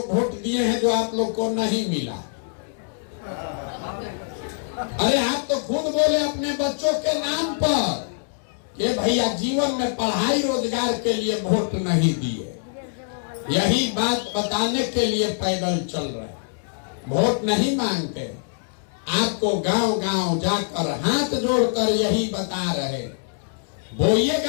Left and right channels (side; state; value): right; silent; digital silence